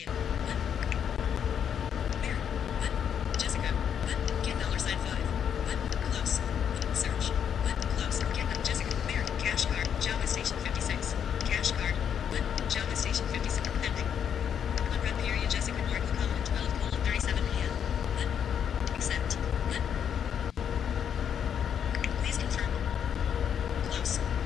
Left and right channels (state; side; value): quieter; right; 8.4 dB